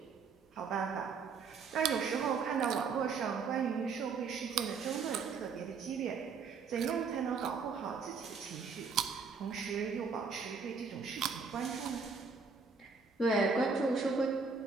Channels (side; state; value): left; quieter; 5.2 dB